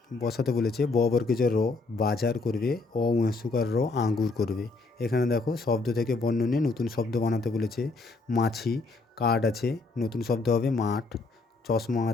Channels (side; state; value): right; quieter; 3.6 dB